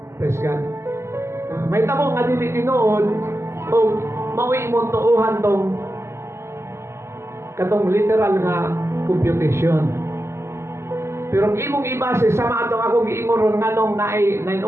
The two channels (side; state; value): left; late; 0.13 ms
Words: Praise God. May tabo nga dili tinuod o mawi mo tuuhan tong katong literal nga computation. Pero kung imong ibase sama atong akong giingon ron nganong naay 9